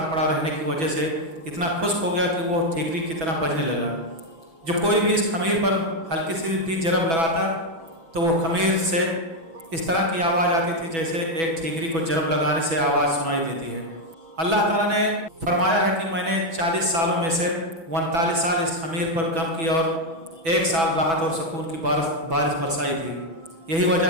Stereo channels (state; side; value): late; left; 6.1 ms